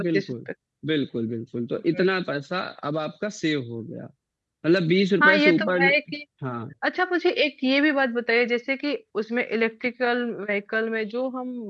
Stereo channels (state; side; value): identical; both; correlation 1.00